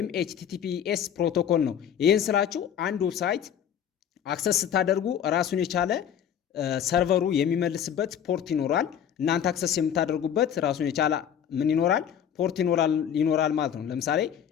ኤችቲቲፒኤስ ፕሮቶኮል ነው። ይህን ስላችሁ አንድ ዌብሳይት አክሰስ ስታደርጉ ራሱን የቻለ ሰርቨሩ የሚመልስበት ፖርት ይኖራል። እናንተ አክሰስ የምታደርጉበት ራሱን የቻለ ምን ይኖራል? ፖርት ይኖራል ማለት ነው። ለምሳሌ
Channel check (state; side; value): quieter; right; 8.9 dB